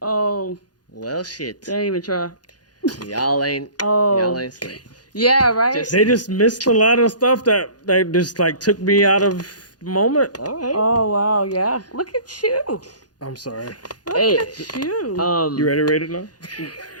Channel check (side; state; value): right; late; 0.69 ms